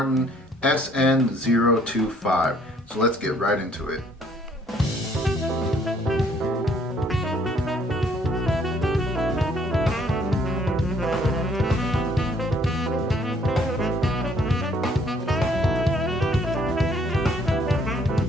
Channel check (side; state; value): both; normal; correlation 0.63